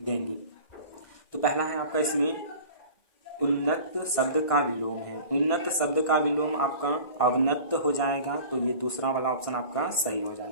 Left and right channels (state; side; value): late; right; 1.6 ms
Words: देंगे। तो पहला है आपका इसमें उन्नत शब्द का विलोम है। उन्नत शब्द का विलोम आपका अवनत हो जाएगा, तो ये दूसरा वाला ऑप्शन आपका सही हो